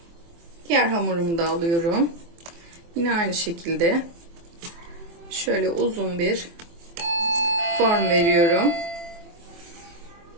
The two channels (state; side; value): late; left; 24 ms